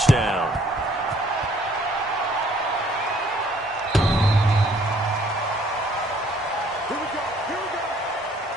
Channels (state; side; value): normal; both; correlation 0.61